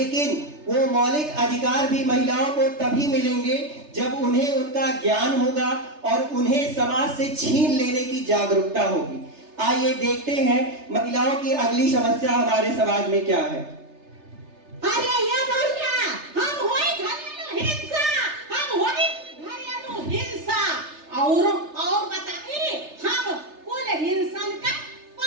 वो मौलिक अधिकार भी महिलाओं को तभी मिलेंगे जब उन्हें उनका ज्ञान होगा और उन्हें समाज से छीन लेने की जागरूकता होगी। आइए देखते हैं महिलाओं की अगली समस्या हमारे समाज में क्या है। अरे ये भैया, हम होई घरेलू हिंसा, हम होई घरेलू हिंसा और बताइए, हम कुल हिंसन का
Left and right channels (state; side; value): late; left; 3.3 ms